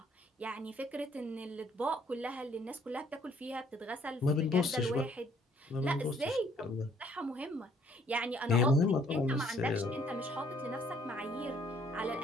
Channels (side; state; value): both; normal; correlation 0.63